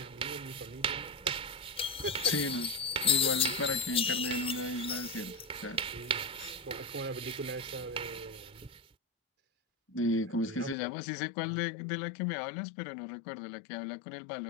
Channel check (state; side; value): drops out; right; at 10.8 s